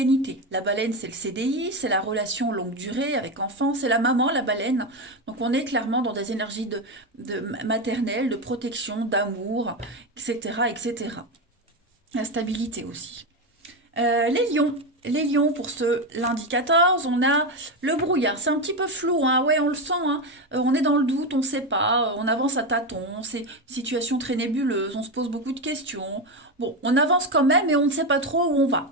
La baleine, c'est le CDI, c'est la relation longue durée avec enfant, c'est la maman, la baleine. Donc, on est clairement dans des énergies de maternelle, de protection, d'amour, etc., etc. La stabilité aussi. Les lions. Les lions, pour ce lundi 14, on a le brouillard. C'est un petit peu flou, hein. Ouais, on le sent, hein. On est dans le doute, on ne sait pas, on avance à tâtons, c'est une situation très nébuleuse, on se pose beaucoup de questions. Bon, on avance quand même et on ne sait pas trop où on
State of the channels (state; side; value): normal; both; correlation 0.13